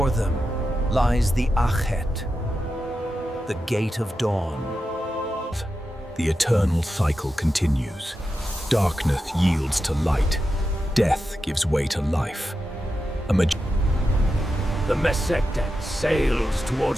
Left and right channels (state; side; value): normal; both; correlation 0.89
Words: them lies the Achet, the gate of dawn. The eternal cycle continues. Darkness yields to light. Death gives way to life. The Mesectet sails